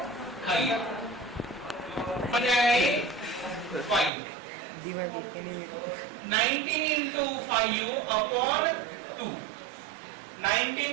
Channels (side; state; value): left; drops out; at 4.1 s